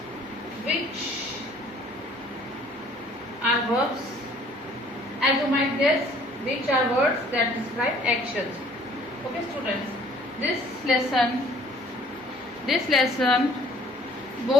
which are verbs, as you might guess, which are words that describe actions. Okay, students, this lesson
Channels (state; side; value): normal; both; correlation 0.57